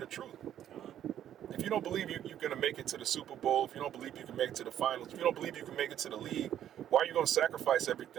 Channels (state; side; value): quieter; left; 10.8 dB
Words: truth? If you don't believe you're going to make it to the Super Bowl, if you don't believe you can make it to the finals, if you don't believe you can make it to the league, why are you going to sacrifice